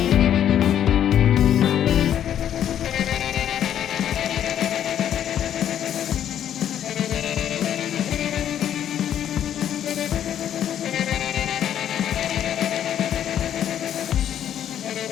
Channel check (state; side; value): quieter; right; 10.2 dB